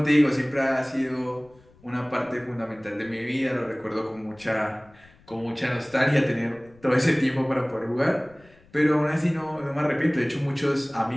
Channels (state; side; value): noise; left; rumble, 28 dB below the sound